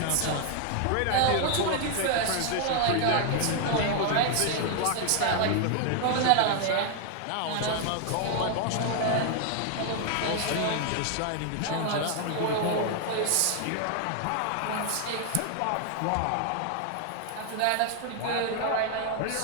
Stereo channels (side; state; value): both; different; correlation 0.00